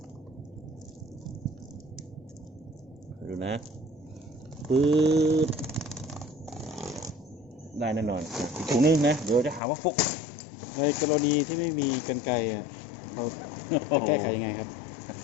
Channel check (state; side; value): drops out; right; at 9.6 s